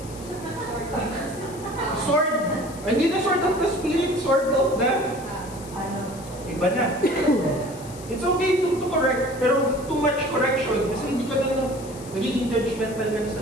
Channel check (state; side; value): noise; left; hiss, 18 dB below the sound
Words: Sword. Hindi na sword of the spirit, sword of the... Iba na. It's okay to correct, pero too much correction kasi hindi ka na nagiging judgmental ka na